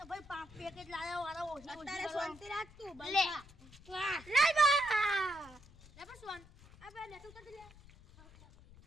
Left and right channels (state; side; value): noise; left; rumble, 21 dB below the sound